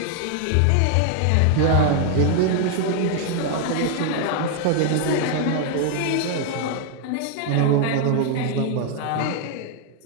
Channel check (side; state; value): both; different; correlation 0.00